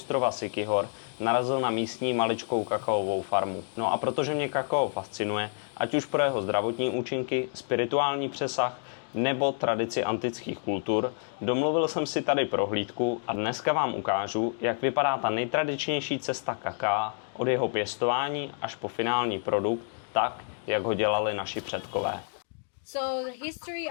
Siquijor narazil na místní maličkou kakaovou farmu. No a protože mě kakao fascinuje, ať už pro jeho zdravotní účinky, spirituální přesah nebo tradici antických kultur, domluvil jsem si tady prohlídku a dneska vám ukážu, jak vypadá ta nejtradičnější cesta kakaa od jeho pěstování až po finální produkt, tak, jak ho dělali naši předkové. So the history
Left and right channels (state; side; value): silent; right; 58 dB below the other